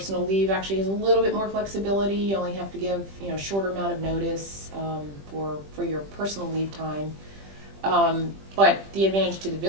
leave actually has a little bit more flexibility. You only have to give, a shorter amount of notice for your personal leave time. But the advantage to the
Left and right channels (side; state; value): left; late; 20 ms